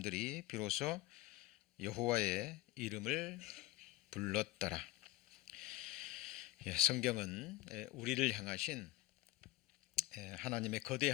비로소 여호와의 이름을 불렀더라. 성경은 우리를 향하신 하나님의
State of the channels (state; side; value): quieter; right; 17.6 dB